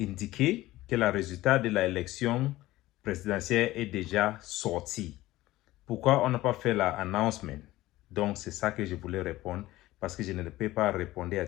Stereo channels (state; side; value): quieter; right; 17.0 dB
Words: que le résultat de l'élection présidentielle est déjà sorti. Pourquoi on n'a pas fait l'announcement? Donc, c'est ça que je voulais répondre parce que je ne peux pas répondre à